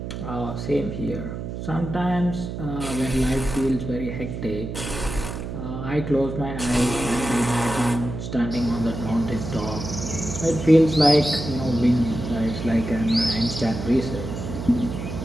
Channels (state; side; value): noise; right; hum, 7 dB below the sound